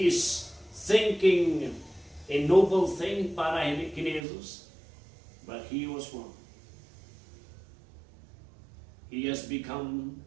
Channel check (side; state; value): left; drops out; at 4.2 s